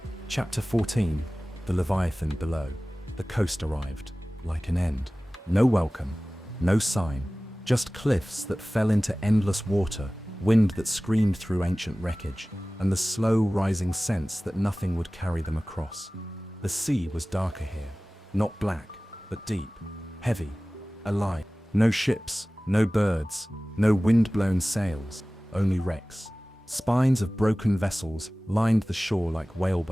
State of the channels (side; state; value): both; normal; correlation 0.98